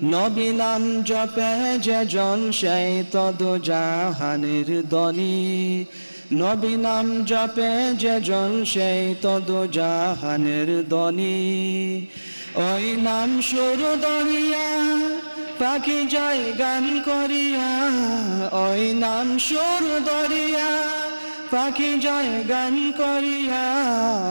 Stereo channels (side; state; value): both; inverted; correlation -1.00